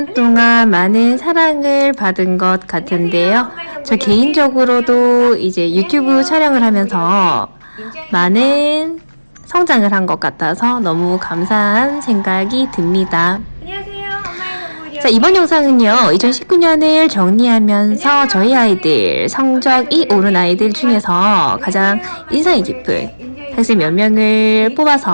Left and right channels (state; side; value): inverted; both; correlation -1.00